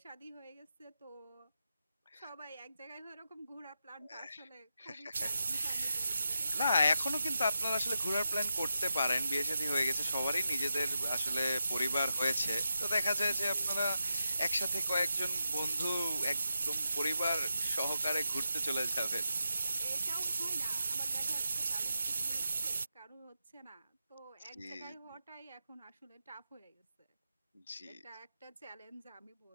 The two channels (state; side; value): inverted; both; correlation -0.88